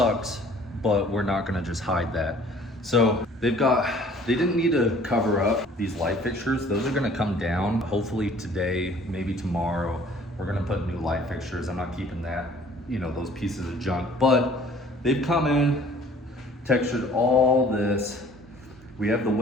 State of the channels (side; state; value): both; normal; correlation 0.54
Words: but we're not gonna just hide that. So they didn't need to cover up these light fixtures. Those are gonna come down hopefully today, maybe tomorrow. We're gonna put new light fixtures. I'm not keeping that, you know, those pieces of junk, but they've come in, textured all this. We have the